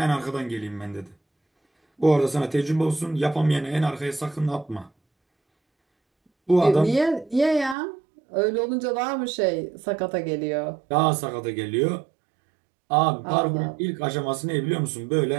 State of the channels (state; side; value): drops out; left; at 7.8 s